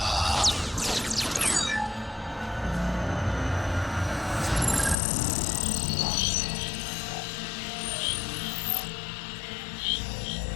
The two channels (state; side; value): drops out; right; at 5.0 s